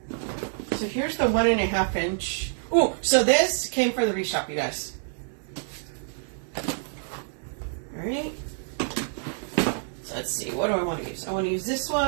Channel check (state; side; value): silent; left; 57 dB below the other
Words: So here's the 1.5 inch. Ooh, so this came from the Wreath Shop, you guys. All right. So let's see. What do I want to use? I want to use this